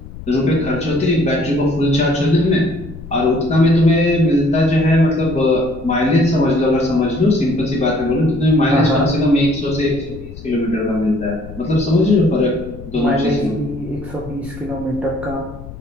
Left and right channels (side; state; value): left; noise; rumble, 14 dB below the sound